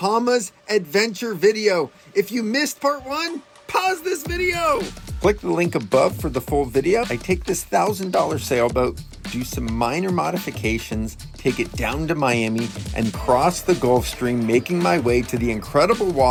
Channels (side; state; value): both; identical; correlation 1.00